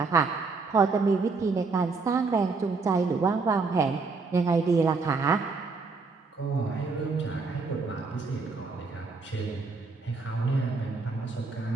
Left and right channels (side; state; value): left; quieter; 4.3 dB